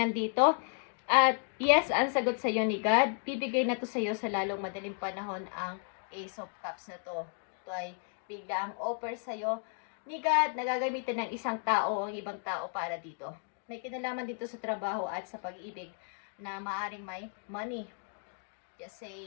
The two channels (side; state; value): right; silent; 55 dB below the other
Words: At yes, ang sagot sa iyo ni God. Bibigay na to sa iyo sa lalong madaling panahon ang Ace of Cups na to. Ito ay bigla ang offer sa iyo ni God na gagamitin ng isang tao o ang ibang tao para dito. May kinalaman dito sa trabaho at sa pag-ibig na maaring may money. Just